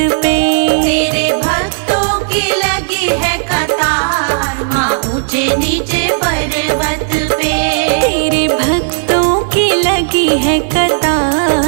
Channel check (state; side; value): silent; left; digital silence